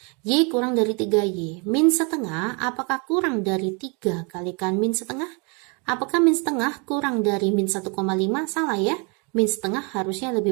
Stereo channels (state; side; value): quieter; left; 33.2 dB